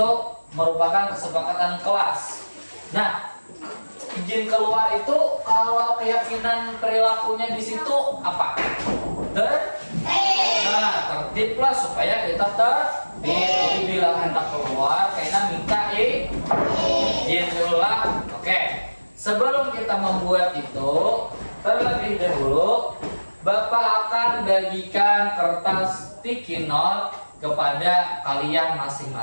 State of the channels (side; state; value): both; inverted; correlation -1.00